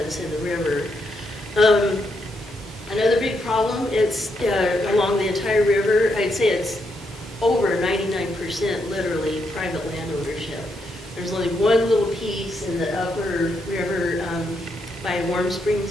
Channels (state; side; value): normal; both; correlation 0.79